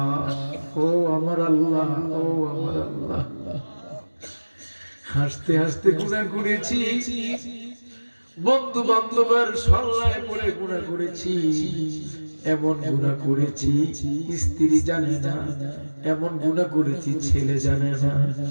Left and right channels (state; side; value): inverted; both; correlation -1.00